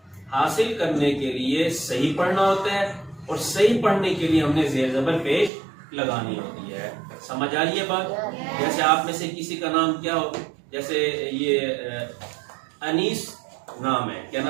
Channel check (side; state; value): left; drops out; at 5.5 s